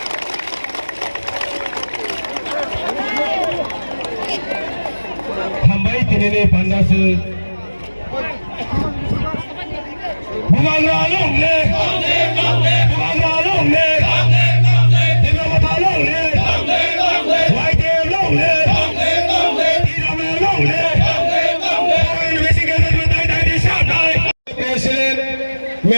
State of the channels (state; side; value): inverted; both; correlation -1.00